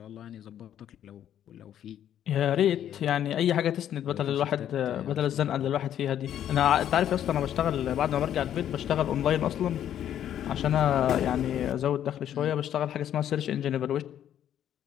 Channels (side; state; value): right; quieter; 10.5 dB